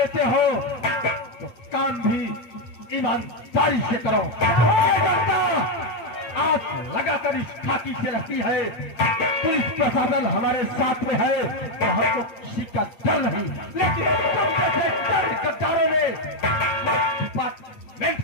हो तो काम भी ईमानदारी से करो। ये जनता आंख लगाकर इस खाकी से रहती है, पुलिस प्रशासन हमारे साथ में है तो हमको किसी का डर नहीं, लेकिन तुम जैसे गद्दारों ने डिपार्टमेंट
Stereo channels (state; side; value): late; right; 8.8 ms